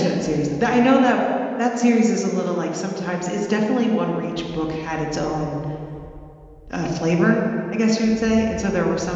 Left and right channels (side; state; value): both; identical; correlation 1.00